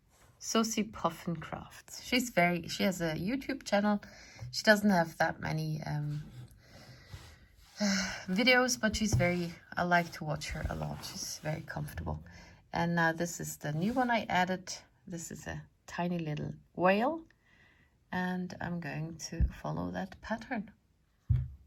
Sosie Puffin Crafts. She has a YouTube channel. She doesn't have that many videos, but I like to watch her a lot. She's very comfortable. And now this is the new one I added. This is a tiny little whale, and I'm going to follow that pattern.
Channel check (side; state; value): both; identical; correlation 1.00